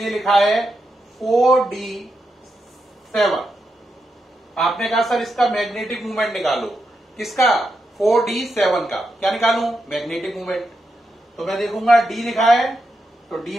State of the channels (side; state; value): both; normal; correlation 0.85